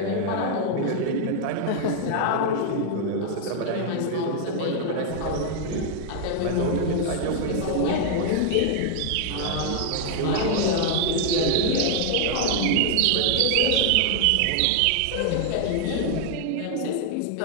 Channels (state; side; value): different; both; correlation -0.01